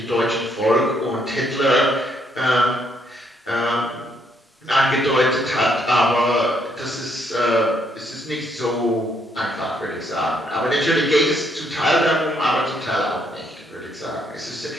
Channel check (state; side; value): normal; both; correlation 0.71